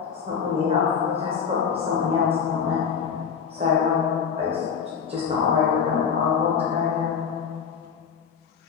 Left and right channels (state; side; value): quieter; right; 6.8 dB